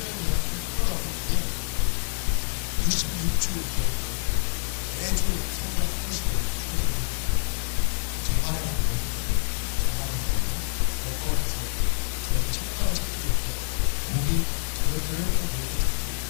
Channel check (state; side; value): silent; right; digital silence